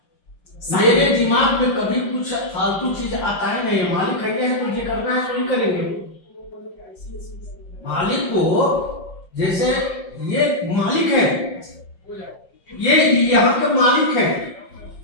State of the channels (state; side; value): late; right; 5.6 ms